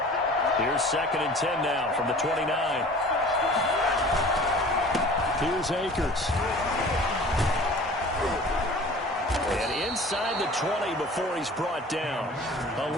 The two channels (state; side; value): normal; both; correlation 0.44